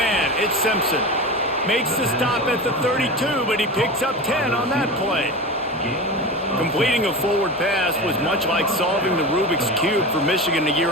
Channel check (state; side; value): normal; both; correlation 0.27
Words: It's Simpson. Makes the stop at the 32, but he picks up 10 on that play. Completing a forward pass was much like solving the Rubik's Cube for Michigan a